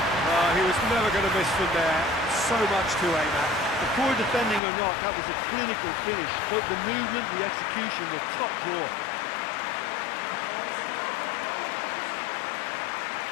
Oh, he was never going to miss from there. So much to aim at. The poor defending or not, that was a clinical finish. Both the movement, the execution were top drawer.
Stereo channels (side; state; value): right; drops out; at 4.6 s